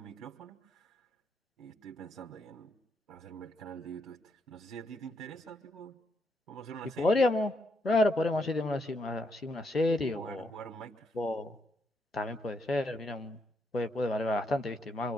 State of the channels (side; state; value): both; normal; correlation 0.77